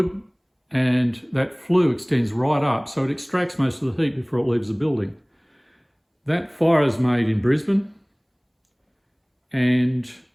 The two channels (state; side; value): identical; both; correlation 1.00